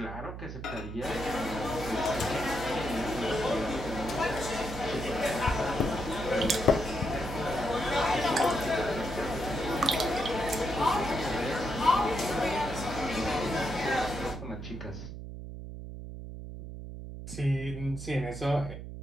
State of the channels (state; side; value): noise; right; hum, 9 dB below the sound